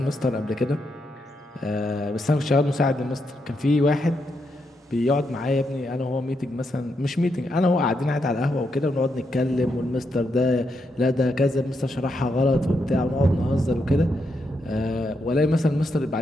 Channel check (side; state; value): both; normal; correlation 0.81